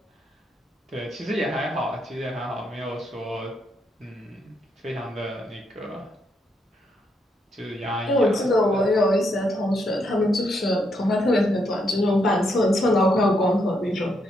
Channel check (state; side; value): normal; both; correlation 0.77